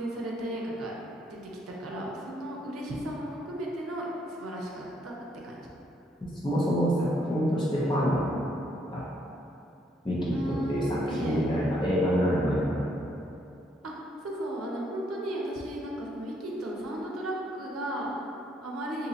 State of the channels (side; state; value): both; normal; correlation 0.71